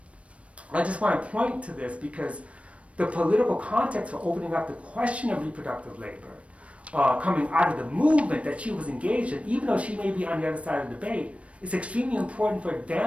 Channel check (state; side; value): late; left; 0.063 ms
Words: I just want to point to this because the political context for opening up the question of reproductive labor coming out of the movement that she was engaged in, even though she may be on the other side of the debate, is extremely important for